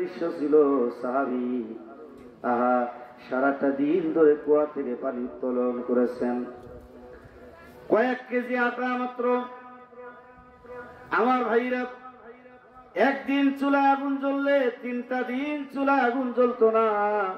ছিল, সাহাবী সারাটা দিন ধরে কুয়া থেকে পানি উত্তোলন করেছেন, কয়েক কেজি আটা মাত্র। আমার ভাইরা, একদিন চুলায় আগুন জ্বললে 3টা দিন চুলায় আগুন জ্বলতো না।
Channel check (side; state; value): both; identical; correlation 1.00